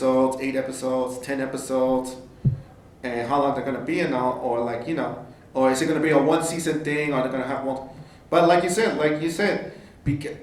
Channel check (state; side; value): identical; both; correlation 1.00